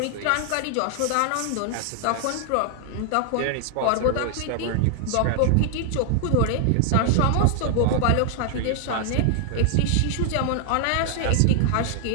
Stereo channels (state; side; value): different; both; correlation 0.00